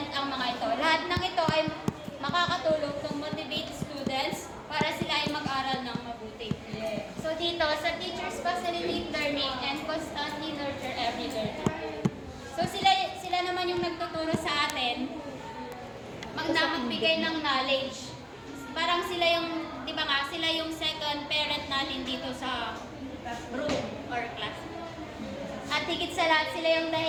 ang mga ito. Lahat ng ito ay makakatulong to motivate students para sila ay mag-aral ng mabuti. So dito, sa teachers facilitate learning and constantly nurture every learner. So sila naman yung nagtuturo sa atin magbigay ng knowledge. Parang sila yung, di ba nga, sila yung second parent natin dito sa room or class. At higit sa lahat, sila yung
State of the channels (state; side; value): identical; both; correlation 1.00